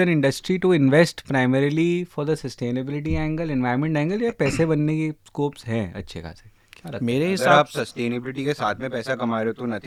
industry to invest primarily for the sustainability angle, environment angle, या पैसे बनने के स्कोप्स हैं अच्छे खासे? मेरे अगर हिसाब आप सस्टेनेबिलिटी के साथ में पैसा कमा रहे हो तो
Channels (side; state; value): both; identical; correlation 1.00